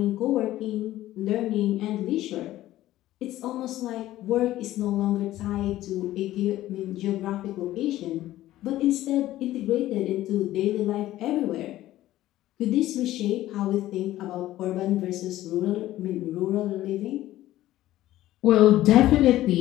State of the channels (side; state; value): right; quieter; 14.8 dB